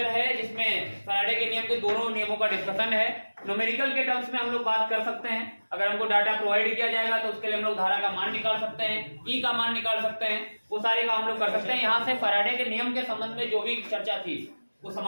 है जिसमें फैराडे के नियम के दोनों नियमों का डिस्कशन है। न्यूमेरिकल के टर्म्स में हम लोग बात कर सकते हैं, अगर हमको डाटा प्रोवाइड किया जाएगा तो उसके लिए हम लोग धारा का मान निकाल सकते हैं, ई का मान निकाल सकते हैं, वो सारे काम हम लोग कर सकते हैं। यहाँ से फैराडे के नियम के संबंध में जो भी चर्चा थी वो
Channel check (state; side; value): inverted; both; correlation -1.00